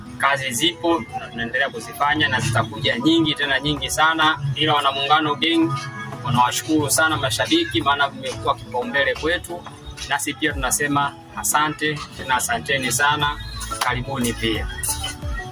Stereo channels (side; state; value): both; identical; correlation 1.00